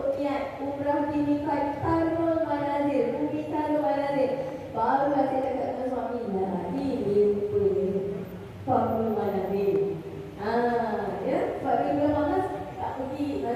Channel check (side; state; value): both; identical; correlation 1.00